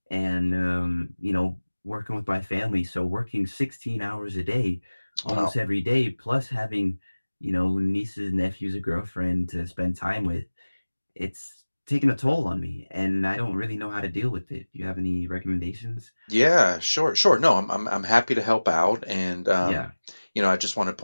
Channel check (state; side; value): inverted; both; correlation -1.00